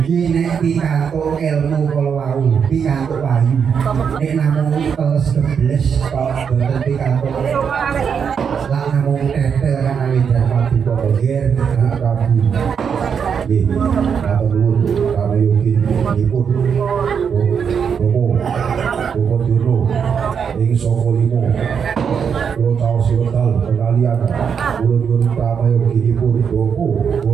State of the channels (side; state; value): left; quieter; 6.9 dB